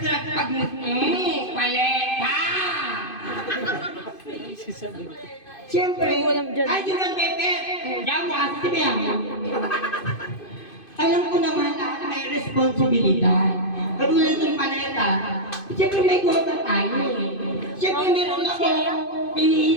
na paleta! Siyempre, ay, yun ang Pepe. Diyan mo kasi si Bea. Alam ko naman na may responsibilidad. Katulad ng paleta, siyempre may quota tayo eh. Siyempre meron ako,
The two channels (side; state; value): right; late; 2.5 ms